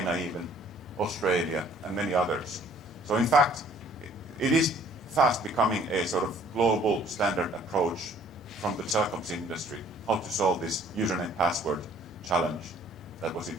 even, Australia, and many others. So in fact, it is fast becoming a sort of global standard approach from the telecoms industry, how to solve this username password challenge that was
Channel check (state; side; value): normal; both; correlation 0.57